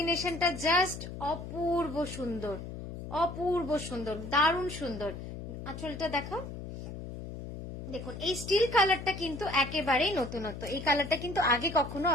জাস্ট অপূর্ব সুন্দর, অপূর্ব সুন্দর, দারুণ সুন্দর। আঁচলটা দেখাও। দেখুন এই স্টিল কালারটা কিন্তু একেবারেই নতুনত্ব, এই কালারটা কিন্তু আগে কখনো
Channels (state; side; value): noise; left; hum, 9 dB below the sound